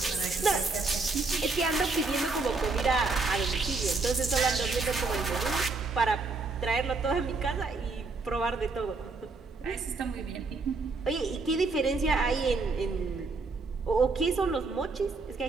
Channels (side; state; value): left; quieter; 3.9 dB